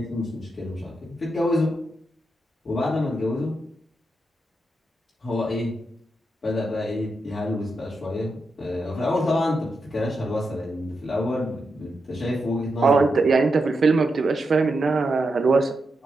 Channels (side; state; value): both; normal; correlation 0.86